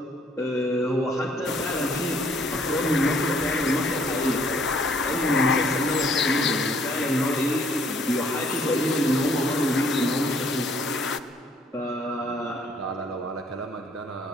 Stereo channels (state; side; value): normal; both; correlation 0.63